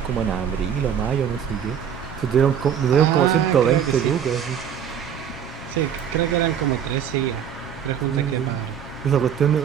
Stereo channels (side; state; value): left; quieter; 8.5 dB